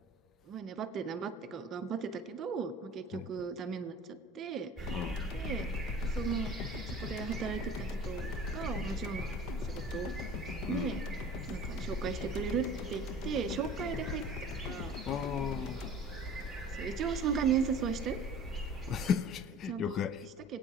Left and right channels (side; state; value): both; normal; correlation 0.44